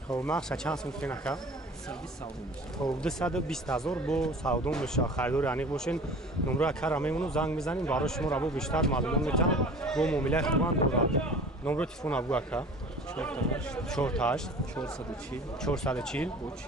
хоб нақша чанд сум кинака? 220,000 бо савдо меша. харидори аниқ бошен. номро акара мемону занг мезанем барои шумо раво бештар маълумот метавон. бо муомилаи хубан дорад. номро телефон абгӯ ака 48 440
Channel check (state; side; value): normal; both; correlation 0.43